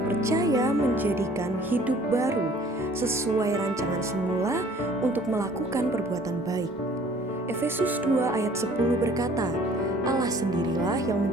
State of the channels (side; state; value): both; normal; correlation 0.53